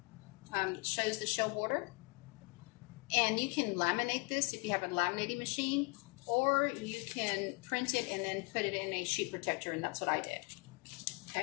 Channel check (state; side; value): quieter; right; 30.0 dB